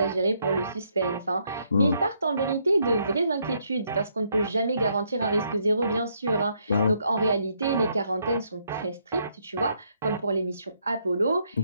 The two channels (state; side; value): inverted; both; correlation -0.73